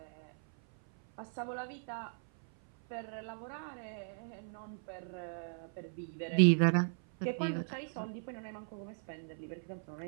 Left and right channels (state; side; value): silent; left; 53 dB below the other